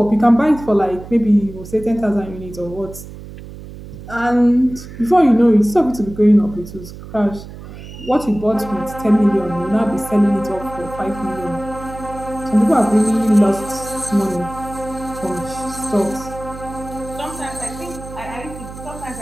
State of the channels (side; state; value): right; noise; hum, 14 dB below the sound